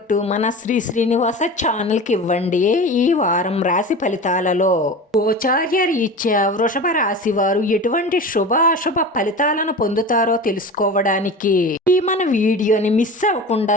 మన శ్రీనివాస ఛానల్ కి ఇవ్వండి. ఈ వారం రాశి ఫలితాలలో గోచార్య రీత్యా వృషభ రాశి వారు ఎటువంటి శుభ అశుభ ఫలితాలను పొందుతారో తెలుసుకోవడానికి ఈ మన వీడియోని మిస్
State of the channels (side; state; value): both; normal; correlation 0.32